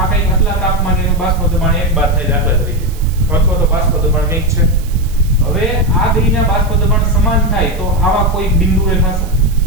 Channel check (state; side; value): noise; right; hiss, 21 dB below the sound